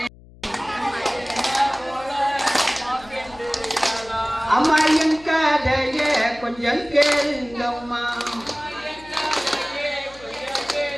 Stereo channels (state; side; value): noise; left; hum, 22 dB below the sound